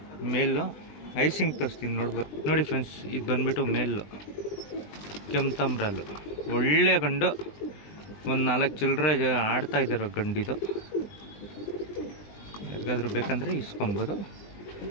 ಮೇಲು. ಐಸಿಂಗ್ ತೋರಿಸ್ತೀನಿ ನೋಡ್ಬೋದು. ನೋಡಿ ಫ್ರೆಂಡ್ಸ್, ಇದು ಬಂದ್ಬಿಟ್ಟು ಮೇಲು ಕೆಂಪ್ತಾಮ್ರಲ್ಲು ಒಳ್ಳೆ ಗಂಡು. ಒಂದು 4 ಚಿಲ್ಲರೆ ಆಡ್ತಾ ಇದ್ದಾರೋ ಗಂಡಿದು. ಯಾರಿಗಾದ್ರೂ ಬೇಕಂದರೆ ಇಸ್ಕೊಬೋದು.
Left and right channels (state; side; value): late; right; 20 ms